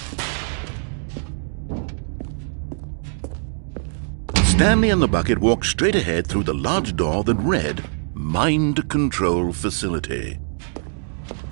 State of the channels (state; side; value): silent; left; 63 dB below the other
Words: Stanley and the bucket walked straight ahead through the large door that read, Mind Control Facility.